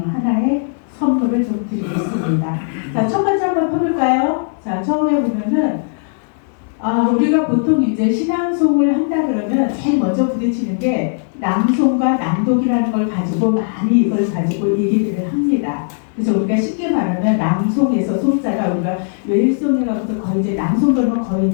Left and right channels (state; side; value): silent; right; 63 dB below the other